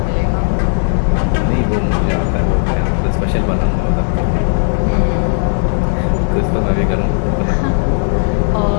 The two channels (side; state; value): right; silent; digital silence